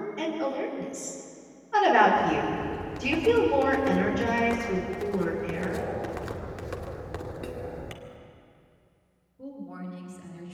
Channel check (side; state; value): both; identical; correlation 1.00